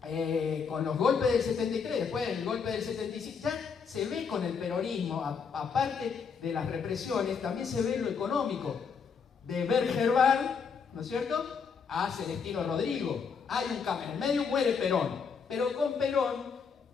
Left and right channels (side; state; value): right; quieter; 6.0 dB